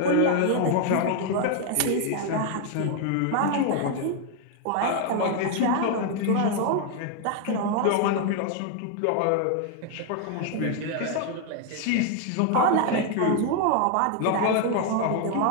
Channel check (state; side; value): different; both; correlation 0.00